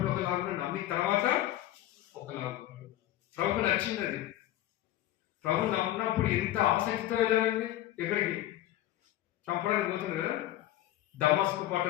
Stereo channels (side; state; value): right; quieter; 14.0 dB